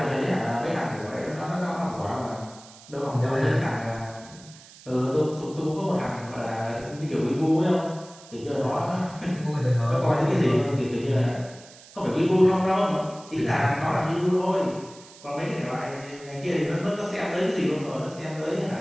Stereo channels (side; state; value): right; noise; hiss, 21 dB below the sound